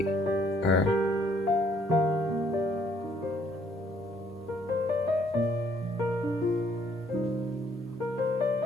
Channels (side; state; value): both; normal; correlation 0.65